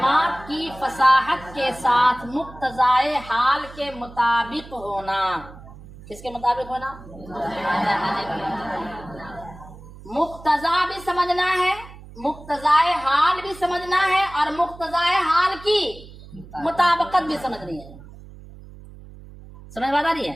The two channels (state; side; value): noise; right; hum, 18 dB below the sound